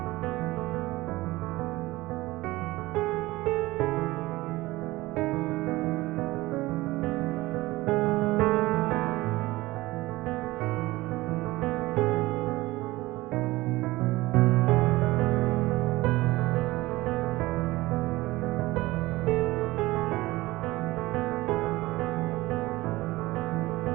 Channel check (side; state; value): left; quieter; 19.3 dB